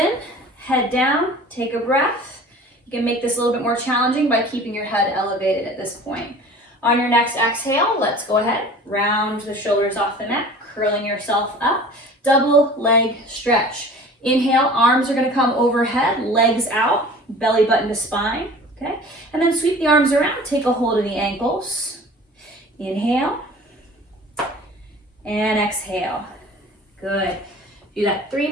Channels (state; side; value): normal; both; correlation 0.43